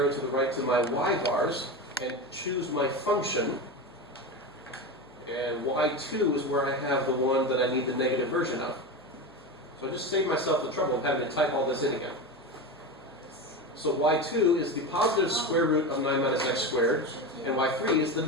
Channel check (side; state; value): left; noise; hum, 27 dB below the sound